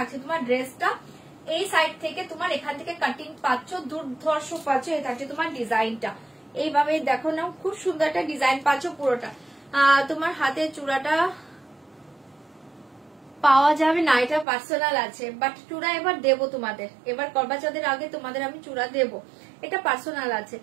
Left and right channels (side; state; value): left; drops out; at 14.5 s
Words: তোমার ড্রেসটা, এই সাইড থেকে তোমার এখান থেকে কাটিং পাচ্ছ, দুর্ধর্ষ পাচ্ছ। এই থাকছে তোমার ডিজাইনটা, এইভাবে দেখো না, খুব সুন্দর একটা ডিজাইন পাচ্ছ পুরোটা। তোমার হাতে চূড়াটা পাওয়া যাবে না, এটা পার্সোনাল আছে, বাট চূড়া এবার দেবো তোমাদের, এবার করবা চৌধুরীর আগে তোমাদের আমি চূড়া দেবো, এটা পার্সোনাল আছে।